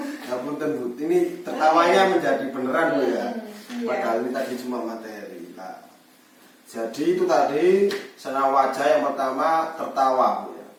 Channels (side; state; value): both; identical; correlation 1.00